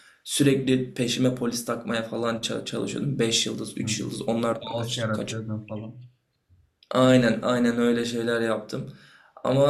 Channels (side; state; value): both; identical; correlation 1.00